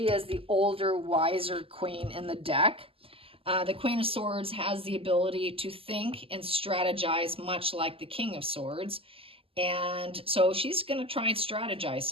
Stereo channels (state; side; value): late; left; 0.27 ms